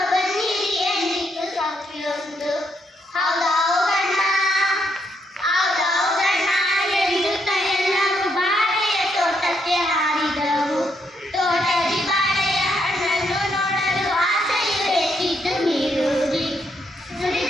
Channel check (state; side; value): normal; both; correlation 0.76